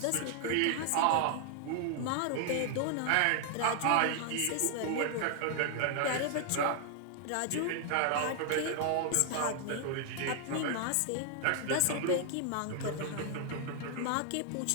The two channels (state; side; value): different; both; correlation 0.00